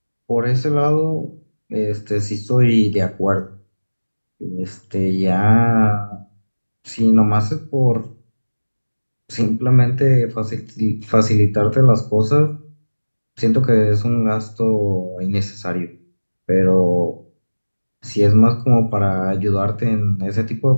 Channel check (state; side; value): inverted; both; correlation -1.00